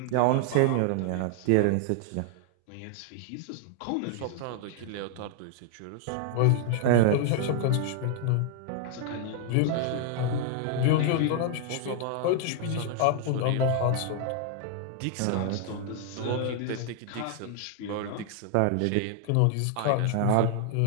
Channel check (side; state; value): both; different; correlation 0.00